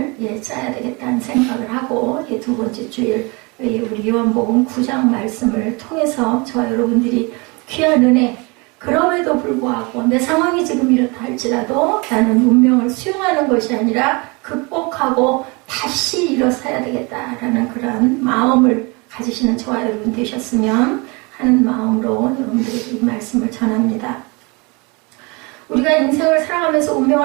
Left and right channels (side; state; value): left; quieter; 28.4 dB